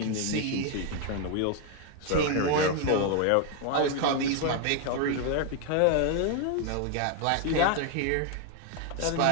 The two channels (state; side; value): different; both; correlation 0.01